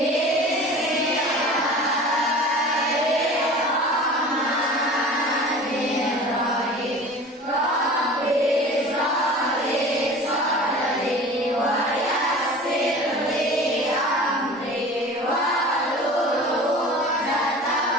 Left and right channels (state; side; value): normal; both; correlation 0.39